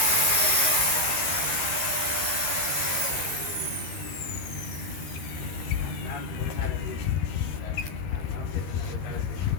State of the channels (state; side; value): late; right; 13 ms